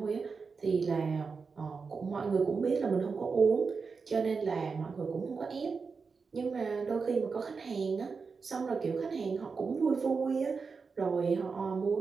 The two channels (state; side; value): quieter; left; 5.0 dB